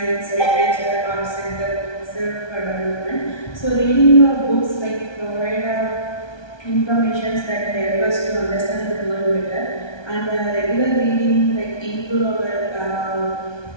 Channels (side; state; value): right; late; 1.2 ms